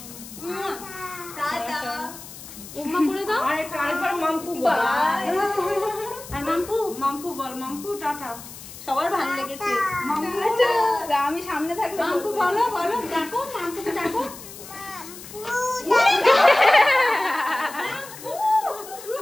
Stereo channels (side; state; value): left; noise; hiss, 15 dB below the sound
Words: ওমা করে দাও। আরেকবার মাম্পু বল। আর মাম্পু মাম্পু বল, মাম্পু টাটা। সবার ভালো লেগেছে। আমি সামনে থাকলে মাম্পু বলো বলো, ডাকো মাম্পুকে ডাকো।